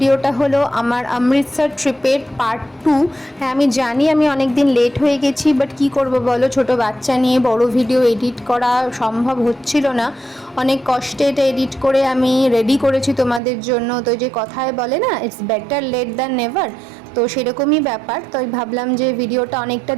হলো আমার অমৃতসর ট্রিপের পার্ট 2। হ্যাঁ, আমি জানি আমি অনেক দিন লেট হয়ে গেছি, বাট কি করব বলো, ছোট বাচ্চা নিয়ে বড় ভিডিও এডিট করা সম্ভব হচ্ছিল না। অনেক কষ্টে এটা এডিট করে আমি রেডি করেছি তোমাদের জন্য। তো যে কথায় বলে না, it's better late than never, তো সেরকমই ব্যাপার। তো ভাবলাম যে ভিডিওটা অনেকটা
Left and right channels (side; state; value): left; drops out; at 13.4 s